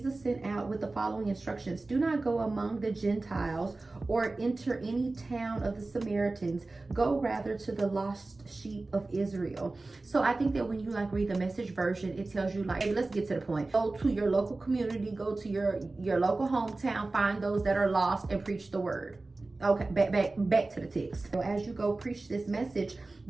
sent out with the following instructions. Do not go among the Gentiles or enter any town of the Samaritans. Go rather to the lost sheep of Israel. So I think that when you like read the Message version, it tells you like, hey, let's get to the point. Go to your local community, go to your local hometown, find those that are lost and preach the word. Okay, back to the text. So as you go preach this message,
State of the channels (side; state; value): left; quieter; 3.3 dB